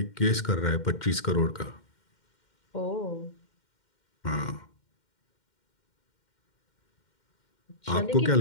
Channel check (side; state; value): right; late; 2.1 ms